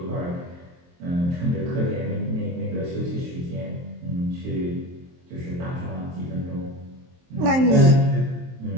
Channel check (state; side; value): late; left; 23 ms